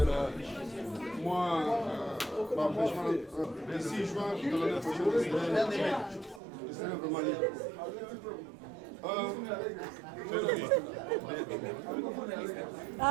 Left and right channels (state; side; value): drops out; left; at 6.4 s